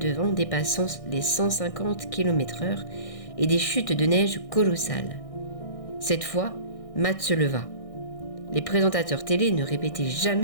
vent dépassant les 150 km/h et des chutes de neige colossales. Cette fois, Matt se leva. Les présentateurs télé ne répétaient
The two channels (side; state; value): right; late; 1.6 ms